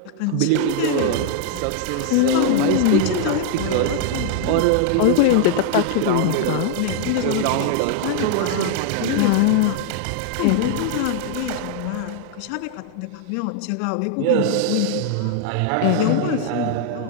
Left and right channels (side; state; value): both; different; correlation -0.01